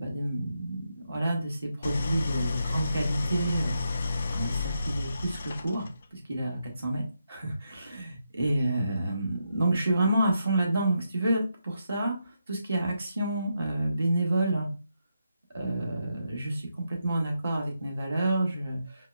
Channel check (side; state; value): both; inverted; correlation -0.83